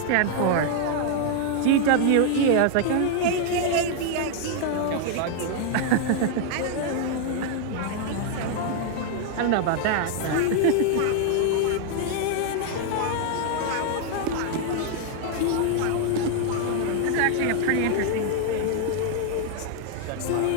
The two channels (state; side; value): different; both; correlation 0.00